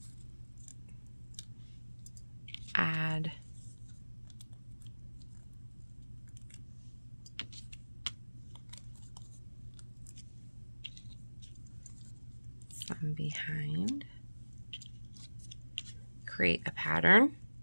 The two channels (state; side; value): inverted; both; correlation -1.00